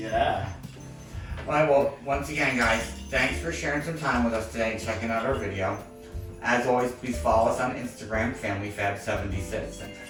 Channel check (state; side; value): identical; both; correlation 1.00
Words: Alright, well, once again, guys, thanks for sharing some time with us today and checking out our video. As always, please follow us on Instagram, Familyfab76.